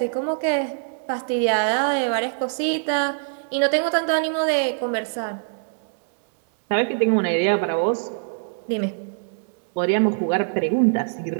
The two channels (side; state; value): left; silent; digital silence